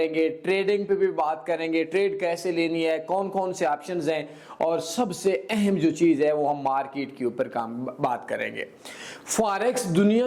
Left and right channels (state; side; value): identical; both; correlation 1.00